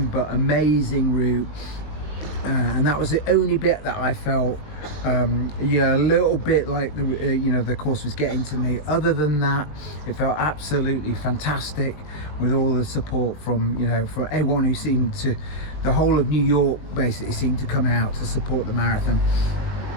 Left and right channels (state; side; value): late; right; 20 ms